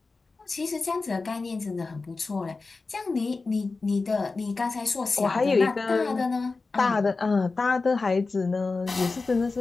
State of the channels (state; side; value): quieter; right; 3.9 dB